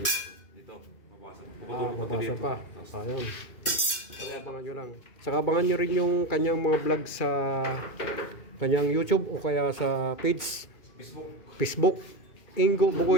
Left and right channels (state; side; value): late; right; 2.4 ms